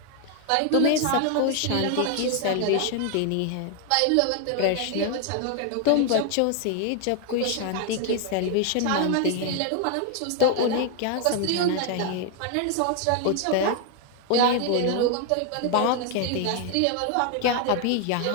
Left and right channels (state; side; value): different; both; correlation 0.00